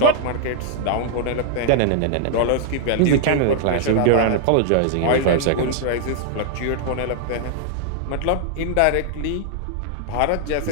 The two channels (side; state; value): both; different; correlation -0.01